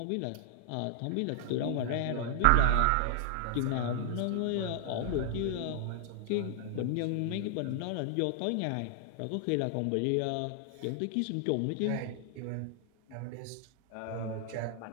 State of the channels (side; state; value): both; different; correlation 0.00